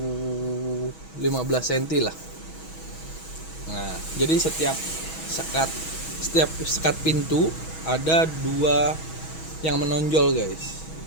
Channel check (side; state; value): right; late; 6.2 ms